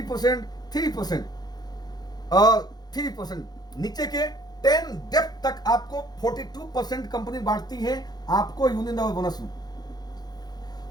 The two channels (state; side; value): late; right; 0.19 ms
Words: 3% और 3%, नीचे के 10 डेप्थ तक आपको 42% कंपनी बांटती है आपको यूनिलेवल बोनस में।